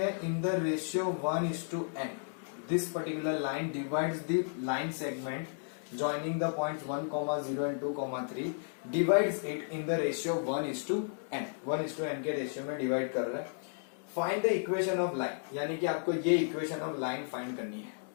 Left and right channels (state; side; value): silent; right; digital silence